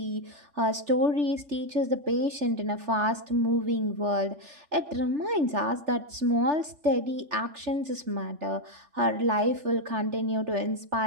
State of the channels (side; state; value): left; late; 3.4 ms